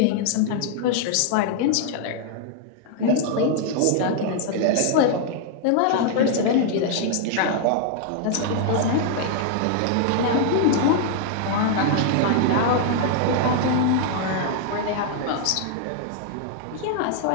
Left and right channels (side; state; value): both; different; correlation 0.00